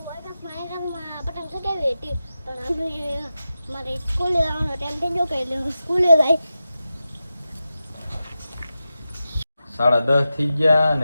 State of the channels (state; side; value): inverted; both; correlation -0.92